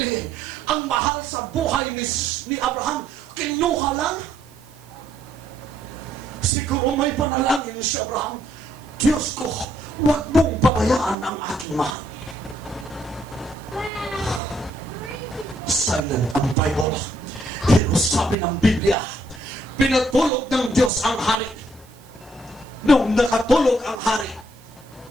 Ang mahal sa buhay ni Abraham, kinuha lang. Siguro may panalangin si Abraham, Diyos ko, huwag mong pabayaan ang aking mahal. Silent ang Bible. Pero sabi ng Biblia, pinatulog ng Diyos ang hari. Nung nakatulog ang hari,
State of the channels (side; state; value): right; noise; hiss, 27 dB below the sound